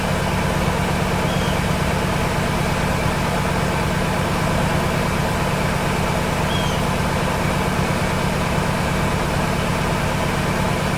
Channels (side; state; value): both; identical; correlation 1.00